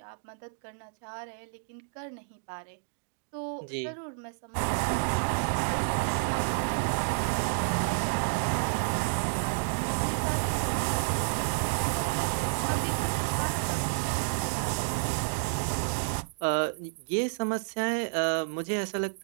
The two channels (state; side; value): silent; left; digital silence